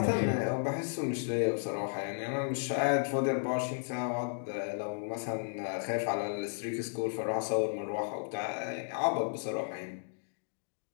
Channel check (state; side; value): silent; right; digital silence